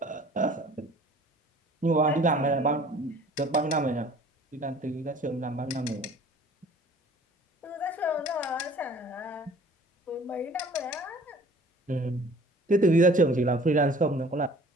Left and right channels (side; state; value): both; normal; correlation 0.50